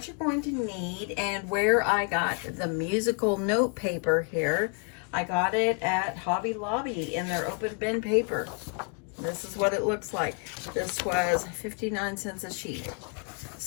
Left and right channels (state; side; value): quieter; right; 37.9 dB